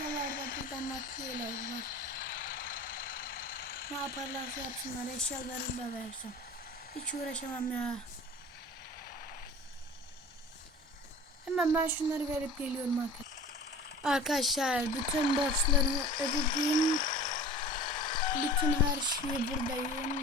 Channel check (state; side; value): normal; both; correlation 0.40